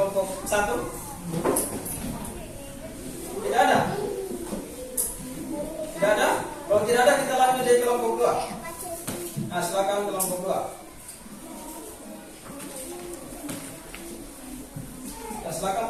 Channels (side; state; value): both; identical; correlation 1.00